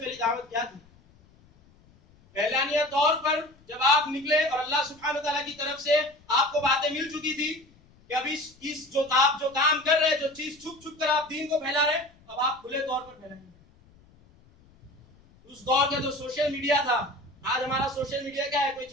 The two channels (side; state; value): left; noise; rumble, 29 dB below the sound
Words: دعوت کیا تھی؟ پہلانیہ طور پر جب آپ نکلے اور اللہ سبحانہ وتعالیٰ کی طرف سے آپ کو باتیں مل چکی تھی کہ اب اس جو آپ جو کام کر رہے، جو چیز چھپ چھپ کر آپ دین کو پھیلا رہے، اب آپ کھلے طور پر پھیلائیں گے۔ اس دور کا جو سوشل میڈیا تھا، آج ہمارا سوشل میڈیا کیا ہے؟